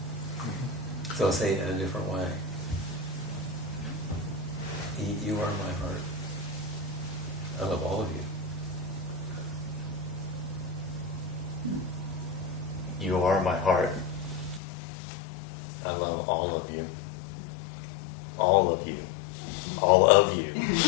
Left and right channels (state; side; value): drops out; right; at 14.6 s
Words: So I'll say it in a different way. You are my heart. I love all of you. You are my heart. I love all of you. All of you. All of you.